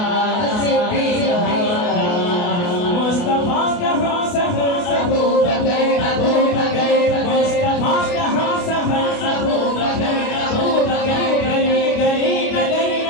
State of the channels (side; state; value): right; late; 28 ms